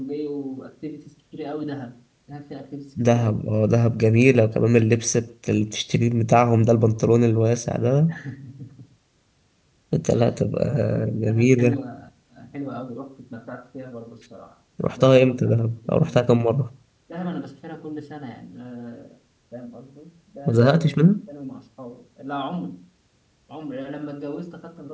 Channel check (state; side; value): identical; both; correlation 1.00